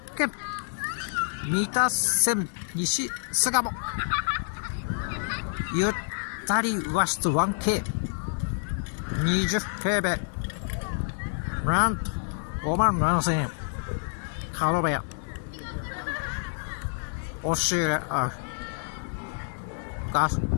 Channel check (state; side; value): silent; right; digital silence